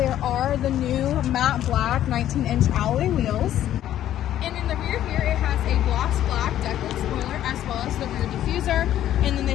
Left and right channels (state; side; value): quieter; right; 12.0 dB